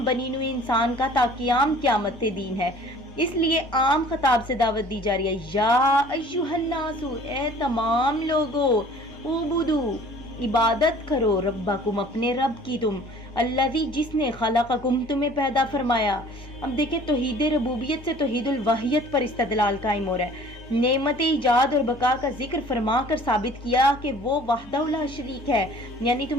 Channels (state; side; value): normal; both; correlation 0.50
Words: بنی نوع انسان کا تا قیام قیامت دین ہے۔ اس لیے عام خطاب سے دعوت دی جا رہی ہے، یا ایھا الناس، اے تمام لوگو، اعبدو، عبادت کرو، ربکم، اپنے رب کی، تم الذی، جس نے خلقکم، تمہیں پیدا فرمایا۔ اب دیکھیں توحید ربوبیت سے توحید الوحیت پر استدلال قائم ہو رہا ہے، نعمت ایجاد اور بقا کا ذکر فرما کر ثابت کیا کہ وہ وحدہ لا شریک ہے، یعنی